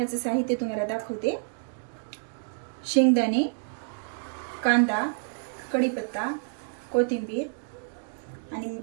साहित्य तुम्हाला दाखवते। शेंगदाणे, कांदा, कढीपत्ता, कोथिंबीर आणि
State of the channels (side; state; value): left; silent; digital silence